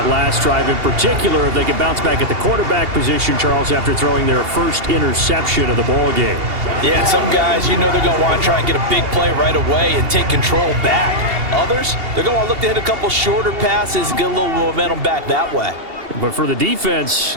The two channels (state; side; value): late; left; 2.8 ms